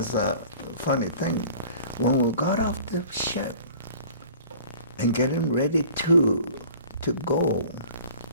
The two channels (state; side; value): inverted; both; correlation -0.47